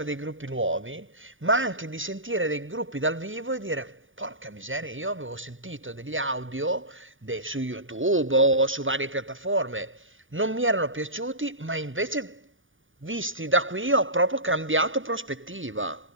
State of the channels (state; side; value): late; left; 0.57 ms